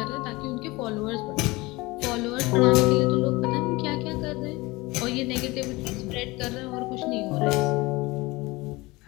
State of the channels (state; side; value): quieter; right; 22.2 dB